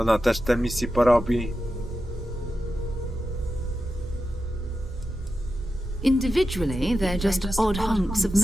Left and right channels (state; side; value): normal; both; correlation 0.91